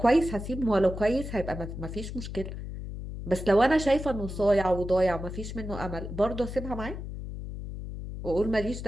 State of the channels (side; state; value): left; noise; hum, 8 dB below the sound